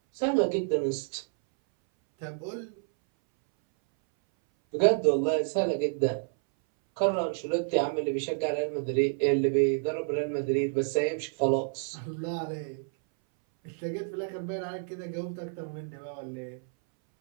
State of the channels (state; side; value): silent; left; 58 dB below the other